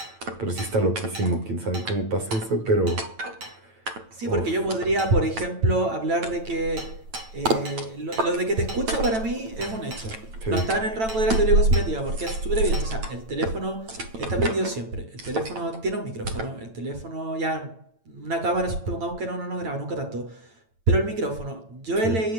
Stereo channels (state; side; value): late; left; 9.0 ms